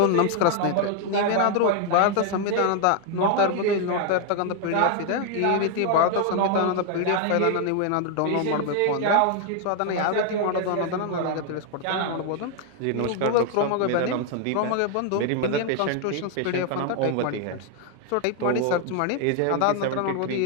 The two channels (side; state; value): both; different; correlation 0.00